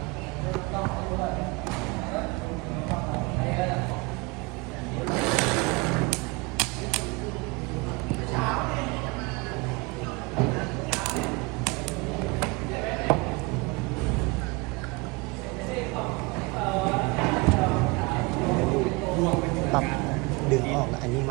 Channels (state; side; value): quieter; left; 26.7 dB